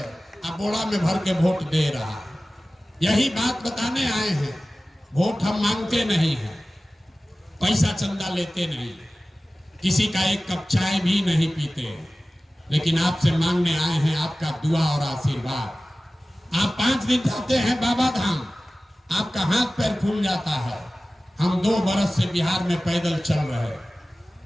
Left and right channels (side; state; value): both; normal; correlation 0.97